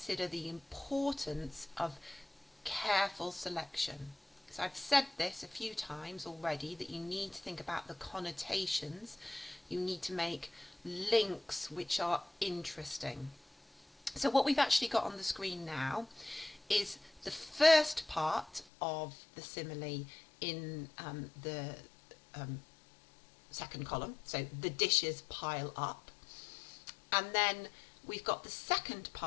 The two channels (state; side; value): drops out; right; at 18.7 s